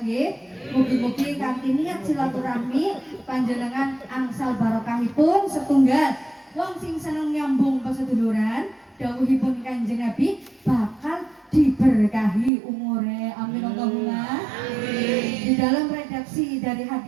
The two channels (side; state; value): left; drops out; at 12.5 s